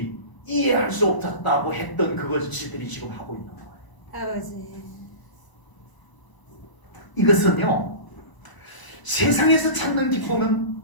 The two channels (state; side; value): late; right; 1.0 ms